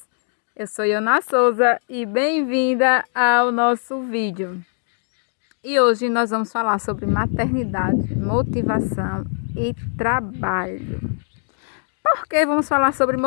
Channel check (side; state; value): right; silent; 56 dB below the other